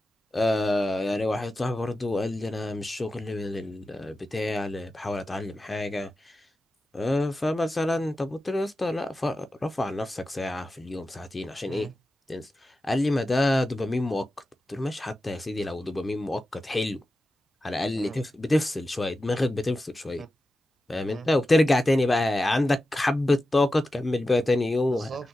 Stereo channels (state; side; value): normal; both; correlation 0.92